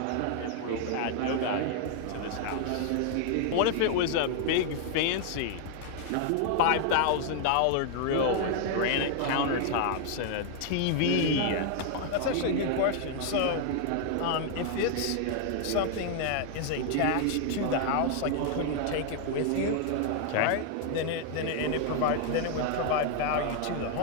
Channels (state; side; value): different; both; correlation 0.00